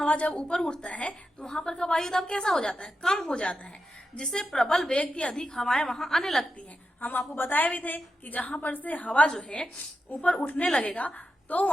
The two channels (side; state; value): both; normal; correlation 0.89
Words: जब ऊपर उठता है तो वहां पर का वायु दाब कैसा हो जाता है, कम हो जाता है, जिससे प्रबल वेग की अधिक हवाएं वहां आने लगती हैं। हम आपको बताए भी थे कि जहां पर से हवा जो है ऊपर उठने लगेगा तो